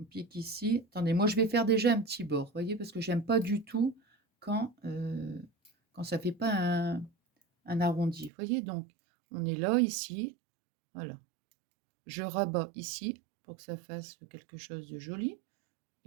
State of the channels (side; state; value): left; drops out; at 8.3 s